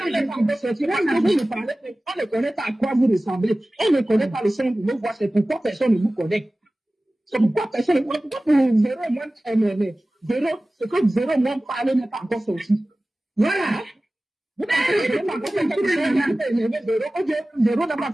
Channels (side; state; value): both; normal; correlation 0.97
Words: ne connaît pas à quoi vous ressemblez. On ne connaît pas le son de vos voix. C'est pourquoi personne ne vous connaît. C'est pourquoi personne ne vous connaît. Pourquoi pour Véro et moi, Véro, ce que Véro et moi parlent n'est pas encore sorti. Voilà. Véro n'a pas